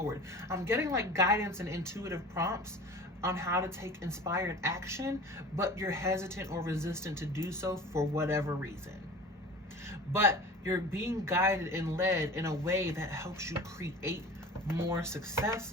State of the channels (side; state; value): both; normal; correlation 0.39